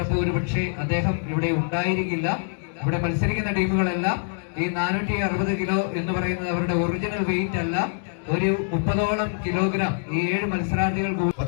ഒരു പക്ഷേ അദ്ദേഹം ഇവിടെ ഉണ്ടായിരിക്കില്ല. ഇവിടെ മത്സരിക്കുന്ന ടീമുകളെല്ലാം ഈ 460 കിലോ എന്ന് പറയുന്നത് അവരുടെ ഒറിജിനൽ വെയിറ്റ് അല്ല, ഒരു 30ഓളം കിലോഗ്രാം ഈ 7 മത്സരാർത്ഥികൾക്ക്.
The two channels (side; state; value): right; silent; digital silence